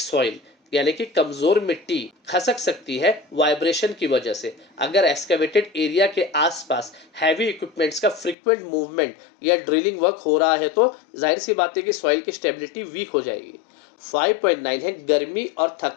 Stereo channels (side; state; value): right; drops out; at 8.3 s